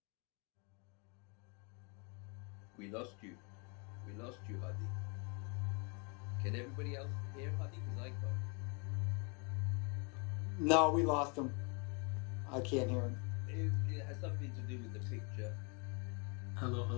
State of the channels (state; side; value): quieter; right; 34.0 dB